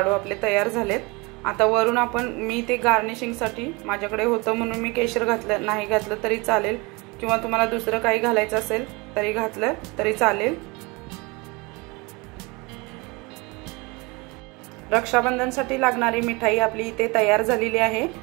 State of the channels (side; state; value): left; quieter; 26.5 dB